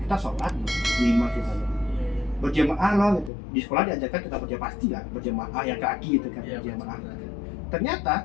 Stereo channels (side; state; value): right; drops out; at 3.3 s